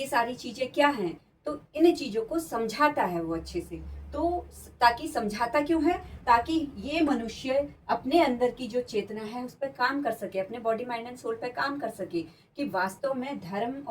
सारी चीजें क्या हैं? तो इन चीजों को समझाता है वो अच्छे से। तो ताकि समझाता क्यों है? ताकि ये मनुष्य अपने अंदर की जो चेतना है उस पर काम कर सके, अपने बॉडी माइंड एंड सोल पर काम कर सके कि वास्तव में धर्म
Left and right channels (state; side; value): identical; both; correlation 1.00